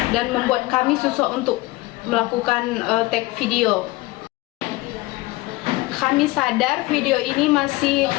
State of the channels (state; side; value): quieter; right; 20.9 dB